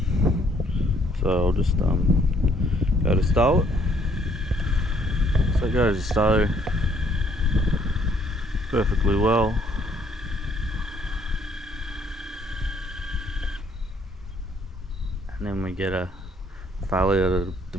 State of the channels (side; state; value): both; normal; correlation 0.65